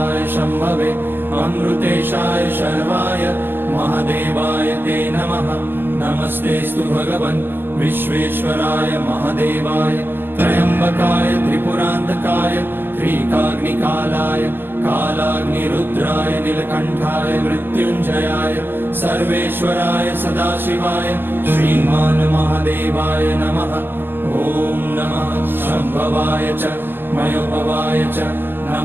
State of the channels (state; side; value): late; left; 0.10 ms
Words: शम्भवे अमृतेशाय शर्वाय महादेवाय ते नमः। नमस्तेऽस्तु भगवन् विश्वेश्वराय महादेवाय त्र्यम्बकाय त्रिपुरान्तकाय त्रिकाग्निकालाय कालाग्निरुद्राय नीलकण्ठाय मृत्युञ्जयाय सर्वेश्वराय सदाशिवाय श्रीमान् महादेवाय नमः। ॐ नमः शम्भवाय च मयोभवाय च